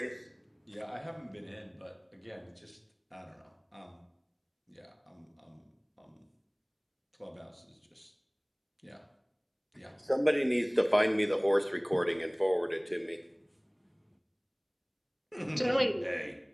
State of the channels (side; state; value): both; identical; correlation 1.00